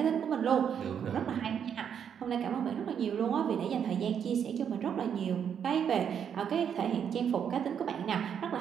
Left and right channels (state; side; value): quieter; left; 8.1 dB